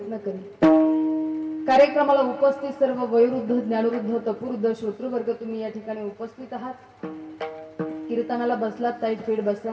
करेन. कार्यक्रमाला उपस्थित सर्व वयोवृद्ध ज्ञानवृद्ध तपवृद्ध श्रोतृवर्ग तुम्ही या ठिकाणी उपस्थित आहात. कीर्तनाला बसलात ताईट फीड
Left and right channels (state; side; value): identical; both; correlation 1.00